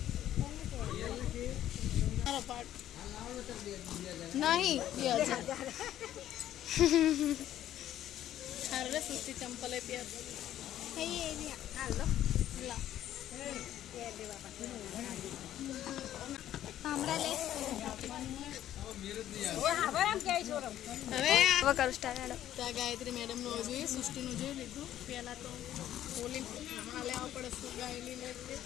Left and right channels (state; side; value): quieter; right; 12.1 dB